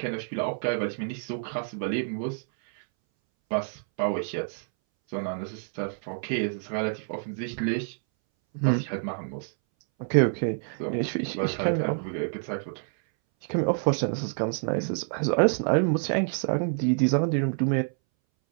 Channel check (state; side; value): silent; left; 60 dB below the other